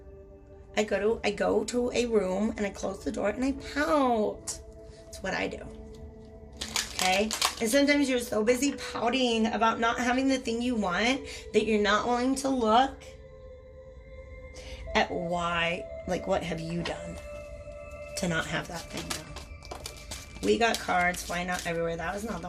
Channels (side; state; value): both; identical; correlation 1.00